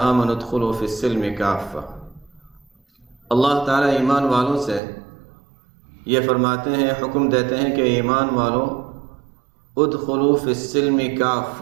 ادخلوا فی السلم کافہ، اللہ تعالیٰ ایمان والوں سے یہ فرماتے ہیں، حکم دیتے ہیں کہ ایمان والوں ادخلوا فی السلم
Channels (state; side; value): drops out; left; at 4.8 s